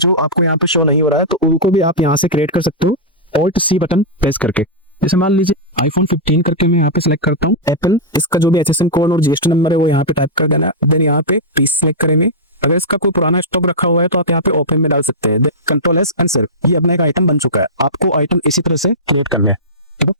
आपको यहाँ पे शो नहीं हो रहा है, तो उनको भी आप यहाँ से क्रिएट कर सकते हो Alt C बटन प्रेस करके। जैसे मान लीजिए iPhone 15 करके मैं यहाँ पे सिलेक्ट करता हूँ एप्पल, इसका जो भी HSN कोड और GST नंबर है वो यहाँ पे टाइप कर देना। देन यहाँ पे पीस सिलेक्ट करेंगे। अगर इसका कोई पुराना स्टॉक रखा हुआ है तो आप यहाँ पे ओपन में डाल सकते हैं। Ctrl+S आंसर, ये अपना एक आइटम बन चुका है। आपको आइटम इसी तरह से क्रिएट करना है। ठीक है,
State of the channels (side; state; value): both; normal; correlation -0.11